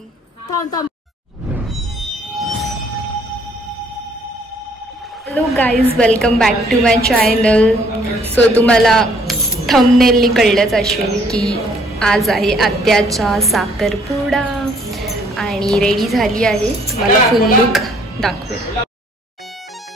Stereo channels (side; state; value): both; normal; correlation 0.62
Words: Hello guys, welcome back to my channel. So तुम्हाला थंबनेलनी कळलंच असेल की आज आहे आत्याचा साखरपुडा आणि रेडी झाली आहे. तुम्हाला फुल लुक दाखवेल.